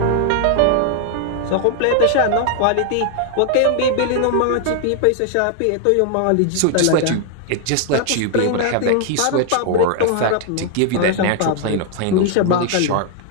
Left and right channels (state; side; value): different; both; correlation 0.00